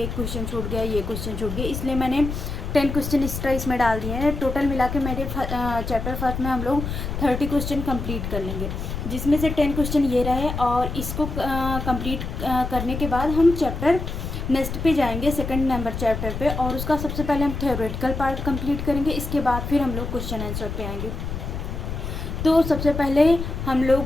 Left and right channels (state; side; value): noise; left; rumble, 5 dB below the sound